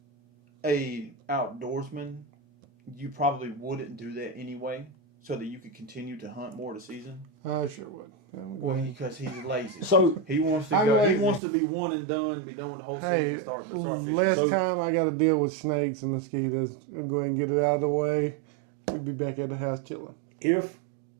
a outdoorsman, you probably wouldn't do that anyway. so that you could continue to hunt more of the season? I sure would. Well, because he's lazy. So He wants to I'm go. He lazy. wants to be one and done, be done with the whole season, Hey, and start fishing. last So- time I got to deal with snakes and mosquitoes. I'm going to get it out of the way. We'll be back at the house chilling. if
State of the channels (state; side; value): drops out; left; at 11.4 s